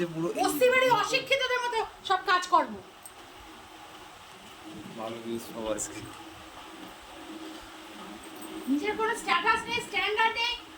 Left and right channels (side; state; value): both; identical; correlation 1.00